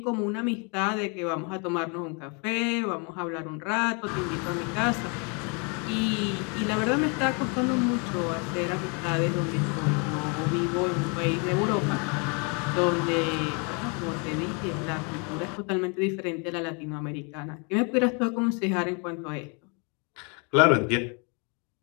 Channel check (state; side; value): quieter; right; 34.6 dB